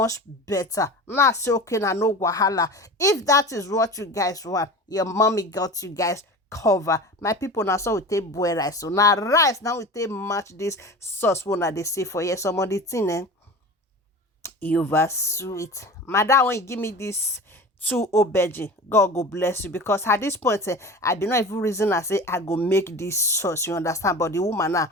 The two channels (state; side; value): normal; both; correlation 0.34